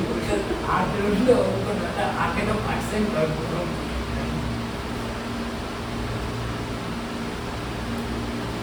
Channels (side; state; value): both; identical; correlation 1.00